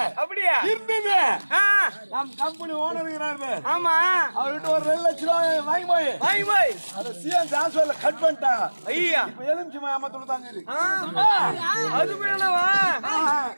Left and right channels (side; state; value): both; inverted; correlation -1.00